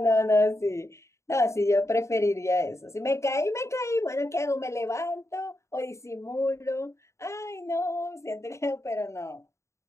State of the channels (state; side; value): late; right; 0.14 ms